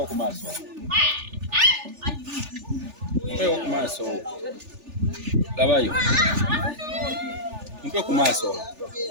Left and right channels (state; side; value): late; left; 3.4 ms